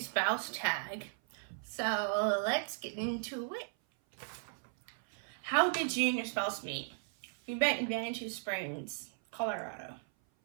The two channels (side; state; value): left; silent; 54 dB below the other